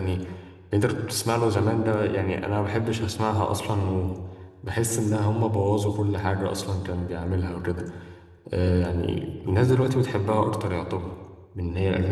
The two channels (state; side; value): identical; both; correlation 1.00